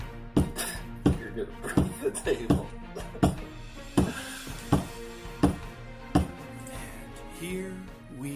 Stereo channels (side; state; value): both; identical; correlation 1.00